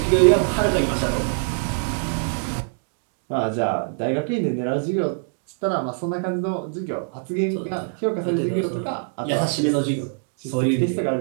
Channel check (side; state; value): left; silent; digital silence